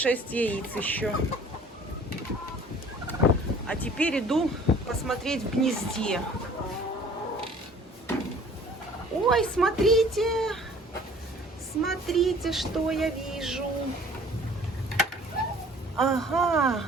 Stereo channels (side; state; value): both; normal; correlation 0.51